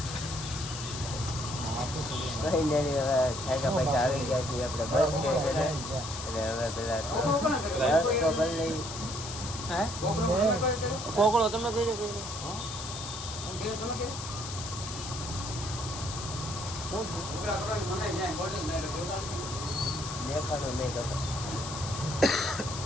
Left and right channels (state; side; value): noise; left; hiss, 8 dB below the sound